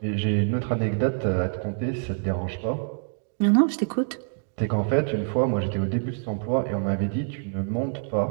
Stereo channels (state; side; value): silent; left; 61 dB below the other